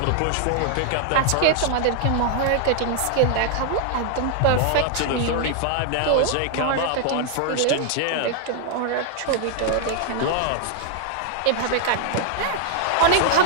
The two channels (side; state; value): both; different; correlation 0.00